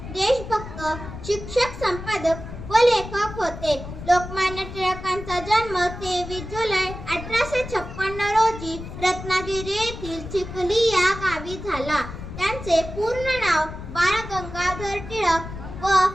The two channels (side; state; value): left; noise; rumble, 11 dB below the sound